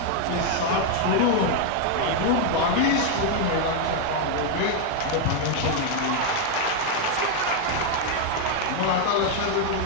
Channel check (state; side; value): different; both; correlation 0.01